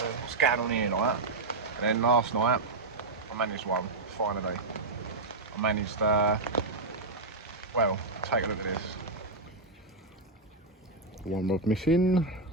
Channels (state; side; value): quieter; left; 3.1 dB